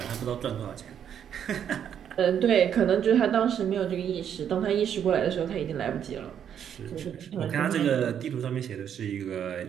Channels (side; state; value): left; quieter; 8.9 dB